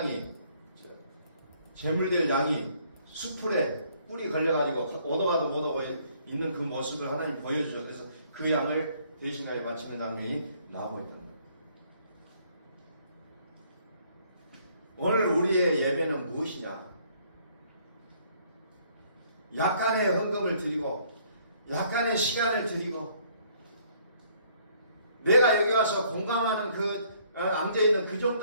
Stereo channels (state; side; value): inverted; both; correlation -0.63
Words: 제물될 양이 수풀에 뿔이 걸려가지고 오도가도 못 오고 있는 그 모습을 하나님 보여주죠. 그래서 그 양을 대신하여 바치는 장면이 나오고 있다는 거예요. 오늘 우리의 예배는 무엇이냐? 약간의 헌금을 드리고 약간의 시간을 드리고 내가 여기 와서 공감하는 그 앉아있는 그